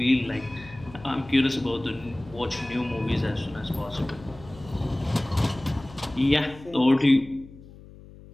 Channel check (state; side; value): noise; left; hum, 19 dB below the sound